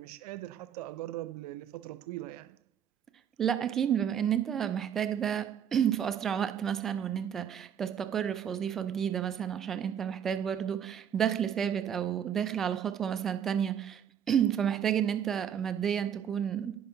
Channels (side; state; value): left; quieter; 8.7 dB